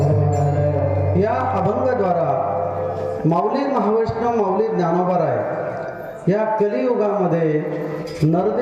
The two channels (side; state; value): both; identical; correlation 1.00